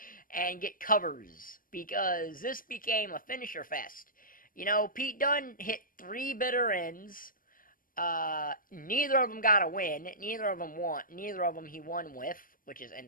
and get covers. Because this became a finisher fest. Pete Dunne hit 3 bitter ends. Neither of them got a win. Neither of them won. Neither of them he won with, which is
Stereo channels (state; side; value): late; right; 0.40 ms